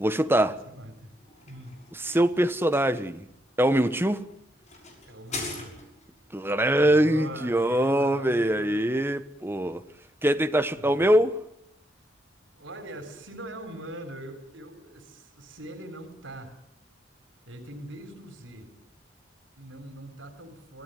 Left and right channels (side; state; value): both; normal; correlation 0.79